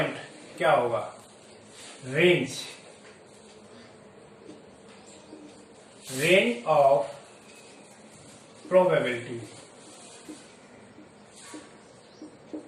क्या होगा, range of probability.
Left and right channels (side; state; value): both; identical; correlation 1.00